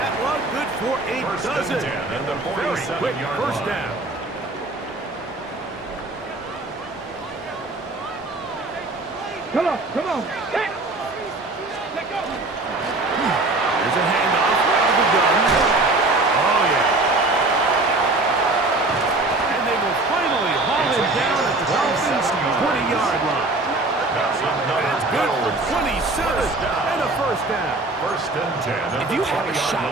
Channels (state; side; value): quieter; left; 3.0 dB